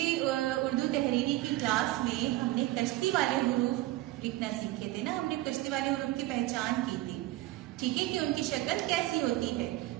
उर्दू तहरीरी की क्लास में हमने कश्ती वाले हुरूफ लिखना सीखे थे ना। हमने कश्ती वाले हुरूफ की पहचान की थी, ठीक है, कि उनकी शक्ल कैसी होती है।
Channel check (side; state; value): left; quieter; 16.9 dB